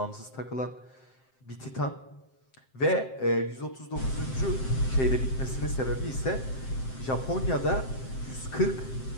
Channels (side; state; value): right; late; 7.7 ms